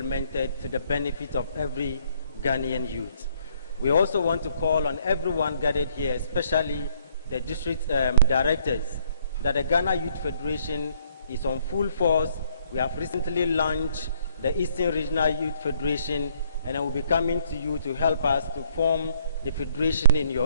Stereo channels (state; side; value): inverted; both; correlation -0.66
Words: to the benefit of every Ghanaian youth. We also want to call on everyone gathered here, especially the district directors, that the Ghana Youth Federation is on full force. We have recently launched the Eastern Regional Youth Federation, and I will be coming to you to help us to form the federation in